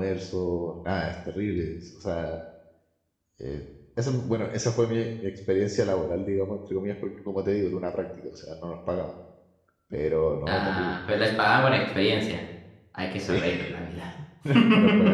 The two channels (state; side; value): identical; both; correlation 1.00